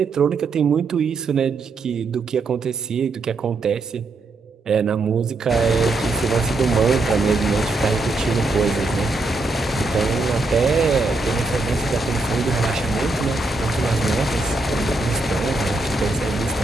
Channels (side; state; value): left; quieter; 3.3 dB